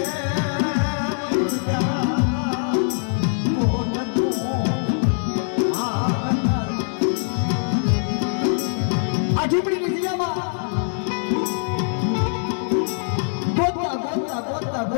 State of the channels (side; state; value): right; silent; digital silence